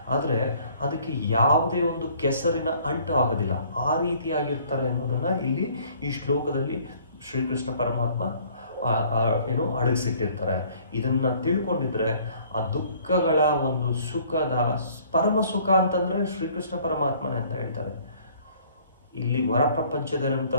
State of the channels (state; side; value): inverted; both; correlation -0.57